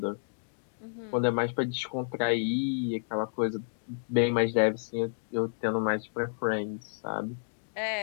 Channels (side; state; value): right; silent; digital silence